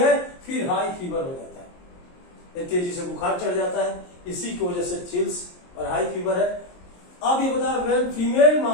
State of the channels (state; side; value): late; right; 23 ms